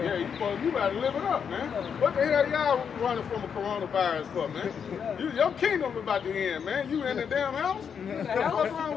you better live it up, man. What the hell y'all running from a coronavirus for, man? Your kingdom about to end, man. You in the damn house? What's wrong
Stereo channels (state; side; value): quieter; right; 7.1 dB